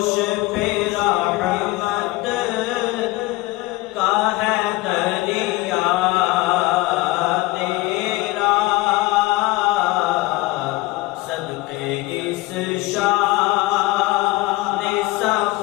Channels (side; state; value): right; quieter; 20.3 dB